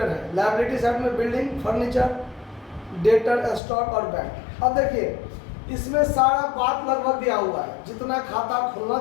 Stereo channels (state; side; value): drops out; right; at 3.6 s